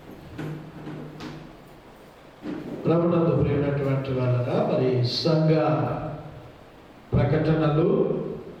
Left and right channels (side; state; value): both; identical; correlation 1.00